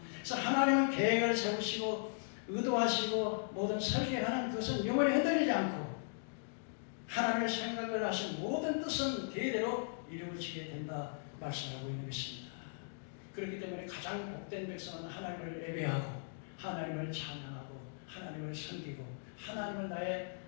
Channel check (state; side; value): silent; right; digital silence